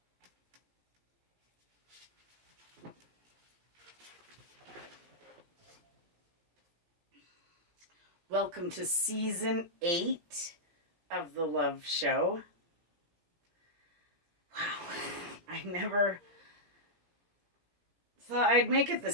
Welcome to season 8 of the Love Show. Wow, I never thought I'd make it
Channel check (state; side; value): late; left; 17 ms